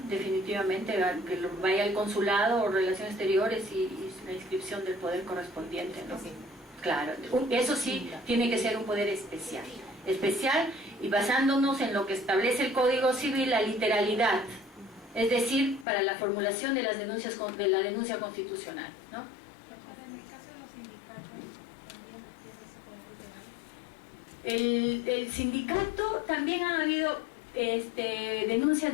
definitivamente, que vaya al consulado o relaciones exteriores y la inscripción del poder correspondiente, ¿no? Sí. Claro, eso sí tiene que ser un poder especial y basándonos en lo que establece el Código Civil, la literalidad, es decir, para la formulación de las denuncias de la denuncia constitucional, ¿no? En el caso de los sindicatos, ¿también tiene ese El sindicato, también ha habido denuncias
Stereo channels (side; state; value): right; drops out; at 15.9 s